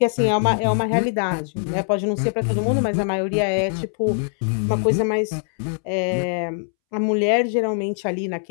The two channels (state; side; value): silent; right; 64 dB below the other